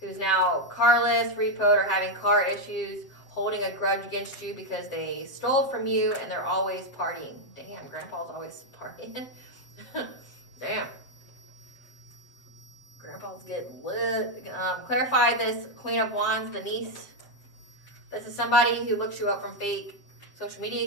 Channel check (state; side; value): late; right; 7.6 ms